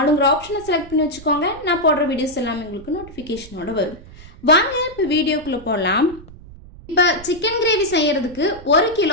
ஆப்ஷனை செலக்ட் பண்ணி வச்சுக்கோங்க. நான் போடுற வீடியோஸ் எல்லாமே உங்களுக்கு நோட்டிஃபிகேஷனோட வரும். வாங்க இப்போ வீடியோக்குள்ளே போகலாம். இப்போ சிக்கன் கிரேவி செய்கிறதுக்கு 1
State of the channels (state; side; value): noise; right; rumble, 19 dB below the sound